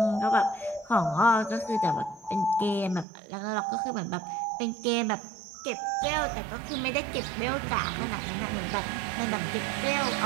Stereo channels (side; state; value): left; drops out; at 3.1 s